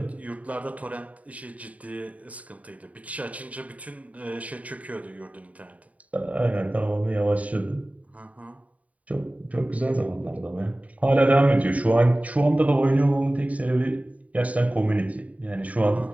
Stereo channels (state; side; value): late; left; 0.069 ms